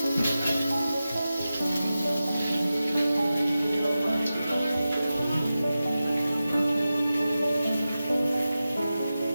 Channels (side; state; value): both; inverted; correlation -0.94